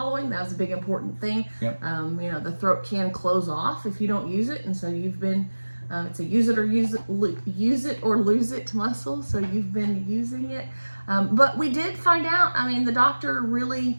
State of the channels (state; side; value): inverted; both; correlation -1.00